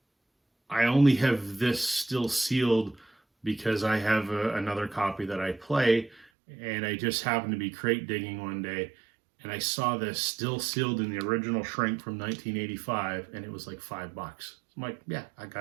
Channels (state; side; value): drops out; left; at 6.2 s